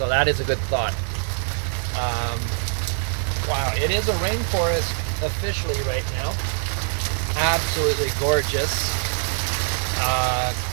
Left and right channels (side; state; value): left; silent; 63 dB below the other